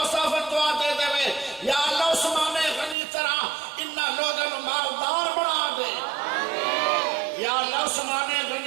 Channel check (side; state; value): left; drops out; at 3.0 s